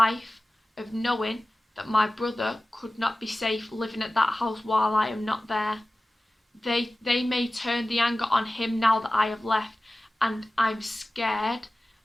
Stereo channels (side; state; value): both; normal; correlation 0.96